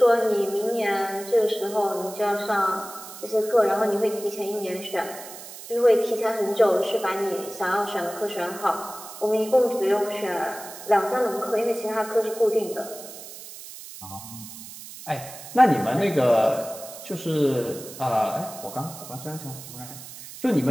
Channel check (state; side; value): noise; right; hiss, 14 dB below the sound